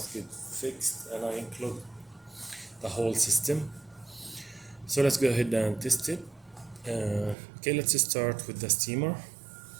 get fixed, and I include the whole system. So let's go ahead and test it. Okay, let's start with the steamer.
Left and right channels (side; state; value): left; drops out; at 7.4 s